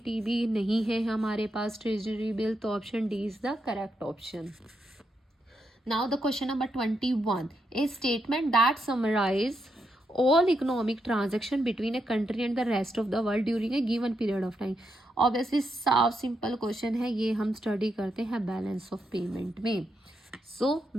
नहीं है हमारे पास ट्रेजरी बिल, तो option D is the correct option. Now the question number 21, a statement that summarize all economic transaction between a country and the rest of the world during a given period of time। Obviously साफ simple question है, ये हम study करते हैं balance of payment में। So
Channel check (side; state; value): both; normal; correlation 0.82